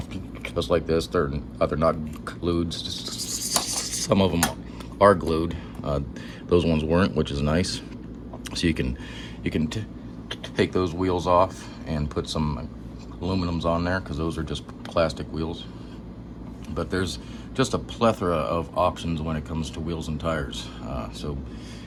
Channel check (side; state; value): both; identical; correlation 1.00